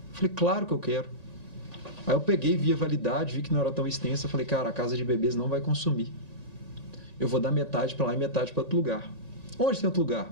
falei, claro que eu quero. Aí eu peguei, vi a validade, vi que não era tão extensa, falei, cara, a casa de bebês não vai consumir. Eu vou dar metade para lá e metade para outro lugar. Onde tem outro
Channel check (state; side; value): late; right; 1.9 ms